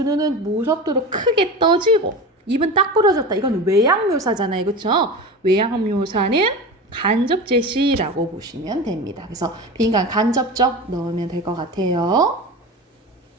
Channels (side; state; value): both; normal; correlation 0.29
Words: 눈은 무섭도록 크게 떠지고 입은 딱 부러졌다. 이건 외양 묘사잖아요. 그렇죠? 외양 묘사는 간접 제시라고 보시면 됩니다. 그래서 빈칸 간접적 넣으면 될 것 같아요.